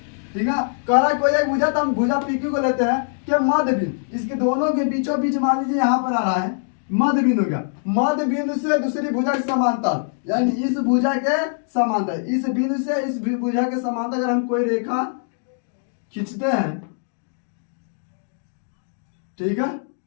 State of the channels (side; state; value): right; silent; digital silence